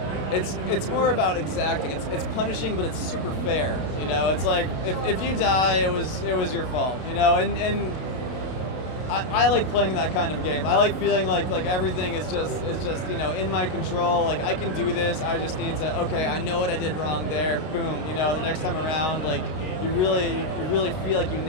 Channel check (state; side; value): late; right; 32 ms